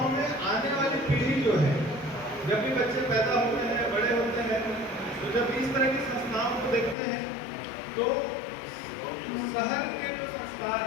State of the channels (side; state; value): right; drops out; at 7.0 s